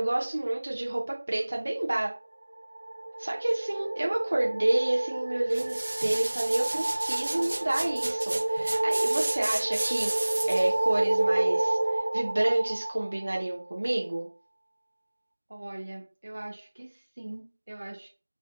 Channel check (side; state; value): both; inverted; correlation -1.00